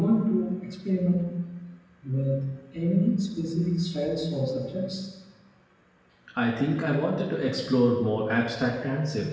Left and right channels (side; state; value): both; identical; correlation 1.00